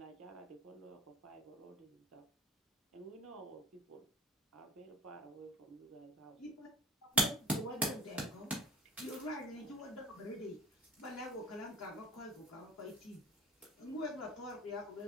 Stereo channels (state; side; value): normal; both; correlation 0.41